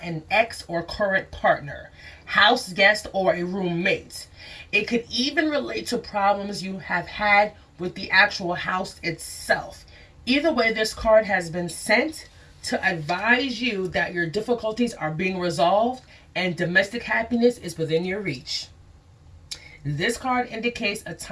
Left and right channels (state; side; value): identical; both; correlation 1.00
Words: ex or current partner, house guest, or a roommate. It could even relate to problems you have had with the actual house itself. Either way, this card has been sent to advise you that your difficulties are being resolved and domestic happiness is within your reach. This card indicates a